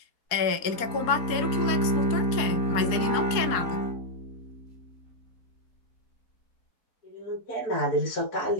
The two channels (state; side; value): late; right; 4.7 ms